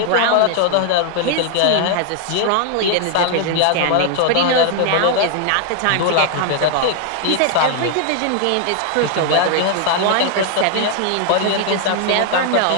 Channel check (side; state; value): both; different; correlation 0.00